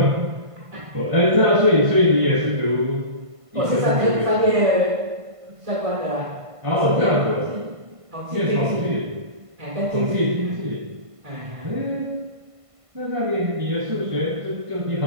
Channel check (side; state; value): left; late; 1.5 ms